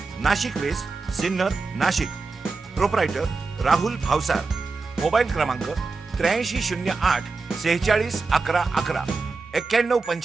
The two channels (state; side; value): quieter; left; 4.2 dB